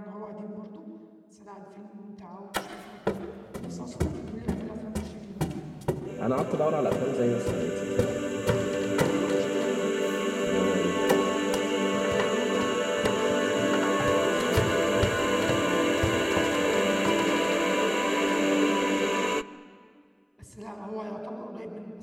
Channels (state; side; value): identical; both; correlation 1.00